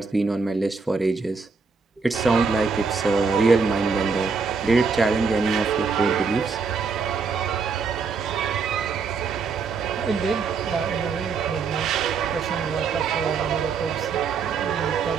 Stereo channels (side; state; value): left; quieter; 5.0 dB